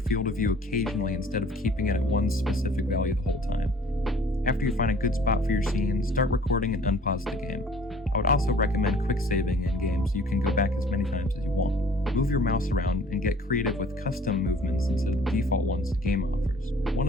of view occasionally instead of keeping it at one specific value the whole time. After you find a good spot for your scene, start recording and unpause the game. I would also recommend quick saving in games so you can go back as many times as you want. Move your mouse around and get creative with custom movements instead of the default ones the game offers. One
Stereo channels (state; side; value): normal; both; correlation 0.52